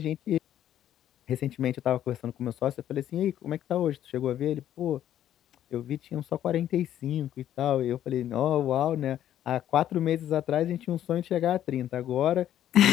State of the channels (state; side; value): quieter; right; 11.4 dB